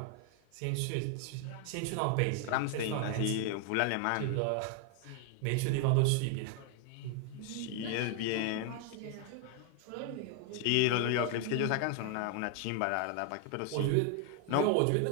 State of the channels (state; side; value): different; both; correlation 0.00